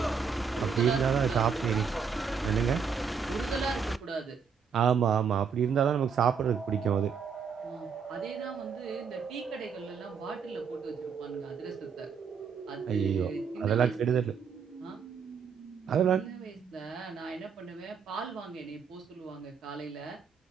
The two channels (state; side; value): quieter; left; 6.2 dB